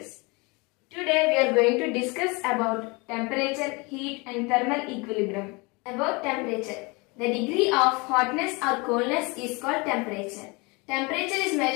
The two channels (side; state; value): right; quieter; 27.4 dB